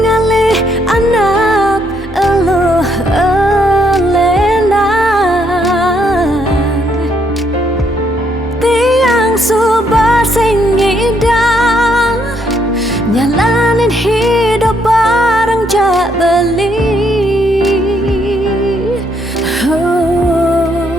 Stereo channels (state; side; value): normal; both; correlation 0.73